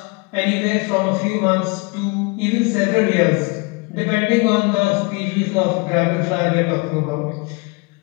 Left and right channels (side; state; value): right; quieter; 28.1 dB